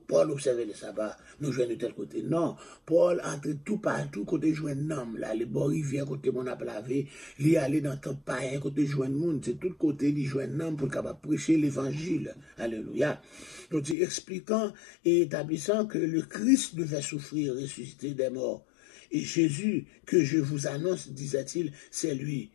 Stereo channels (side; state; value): right; drops out; at 14.0 s